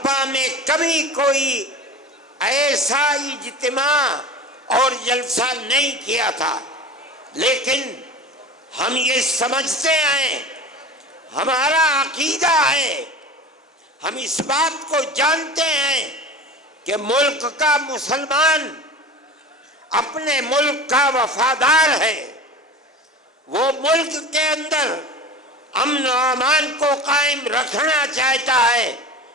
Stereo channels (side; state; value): both; normal; correlation 0.34